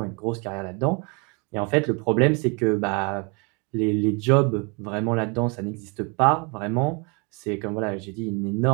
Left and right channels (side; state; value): left; quieter; 32.2 dB